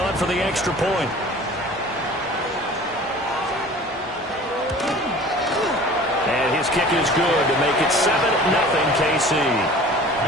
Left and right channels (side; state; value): both; normal; correlation 0.44